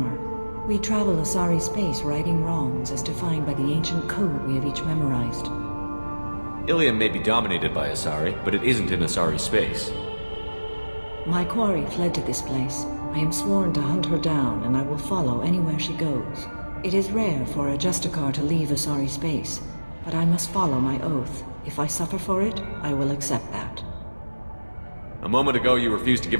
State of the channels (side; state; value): both; inverted; correlation -1.00